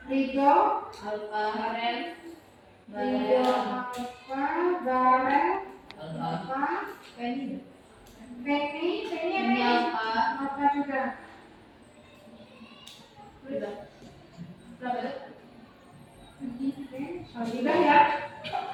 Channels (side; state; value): both; identical; correlation 1.00